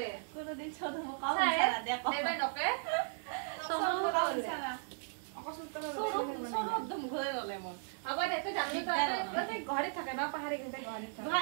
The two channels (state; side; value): silent; left; digital silence